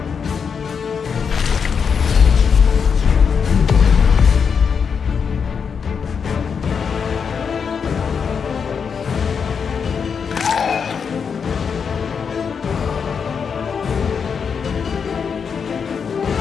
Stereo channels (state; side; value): quieter; right; 6.3 dB